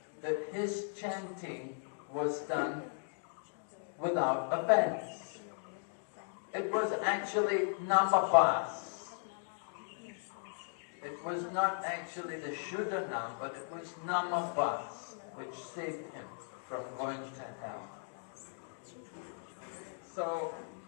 that his chanting was done without offense. It was actually namabhas. It was not actually the Shuddhanam, but it was namabhas which saved him from going to hell. So,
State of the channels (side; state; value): right; silent; digital silence